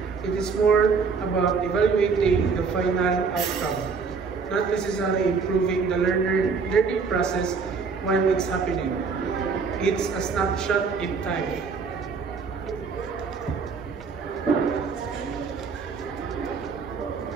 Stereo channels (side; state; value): left; quieter; 5.2 dB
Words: It is more about evaluating the final outcome, not necessarily improving the learning process while it's happening. It's a snapshot in time.